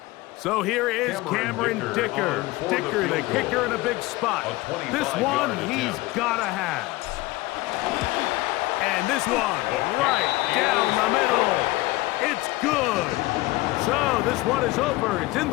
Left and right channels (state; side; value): quieter; right; 19.8 dB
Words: So here is Cameron Dicker. Dicker, the kicker, in a big spot. This one he's got to have. And this one right down the middle. It's good. So this one is over. It's in